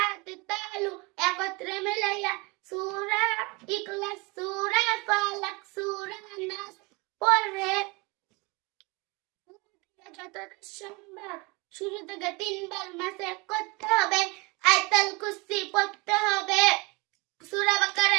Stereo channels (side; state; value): left; quieter; 27.0 dB